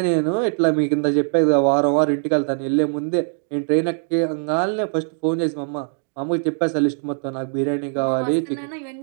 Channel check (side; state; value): left; silent; digital silence